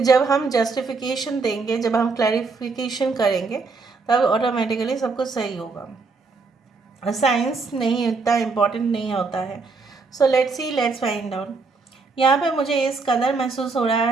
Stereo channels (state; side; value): quieter; left; 4.3 dB